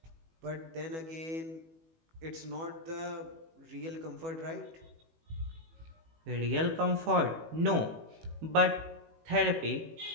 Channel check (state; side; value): late; left; 18 ms